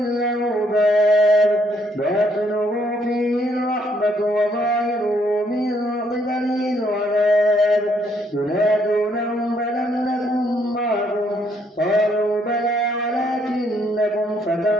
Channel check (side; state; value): both; normal; correlation 0.70